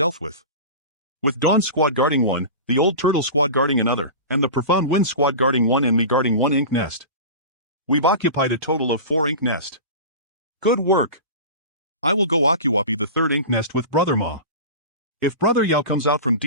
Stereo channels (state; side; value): inverted; both; correlation -0.31